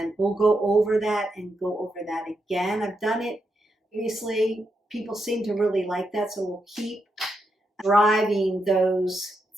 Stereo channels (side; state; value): both; normal; correlation 0.83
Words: we'll go over that and go over that again. I've done it previously. People seem to really like that, so we'll keep driving those